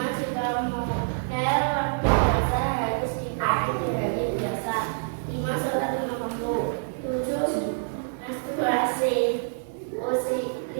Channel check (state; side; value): silent; left; 60 dB below the other